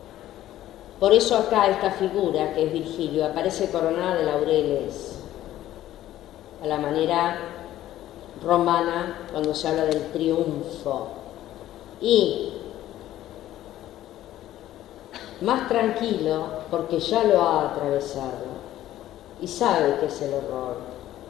Por eso acá esta figura, que es Virgilio, aparece coronada de laureles, a la manera romana cuando se habla del triunfo. Y más tranquilo porque ya lo ha atravesado y sabe que es el horror.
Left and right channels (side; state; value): right; quieter; 13.5 dB